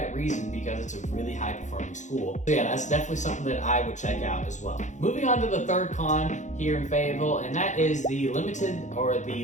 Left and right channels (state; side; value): late; right; 0.35 ms